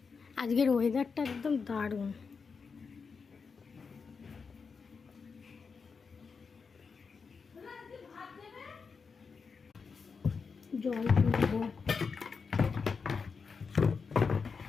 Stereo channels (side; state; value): right; quieter; 5.3 dB